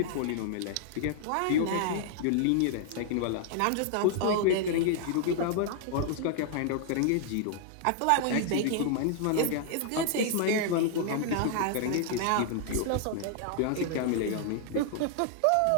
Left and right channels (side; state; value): both; different; correlation 0.00